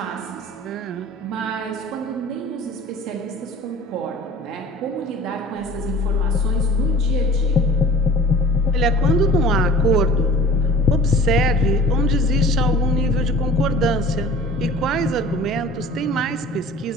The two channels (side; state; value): both; normal; correlation 0.44